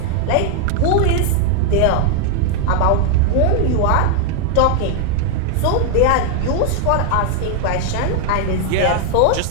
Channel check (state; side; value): different; both; correlation 0.00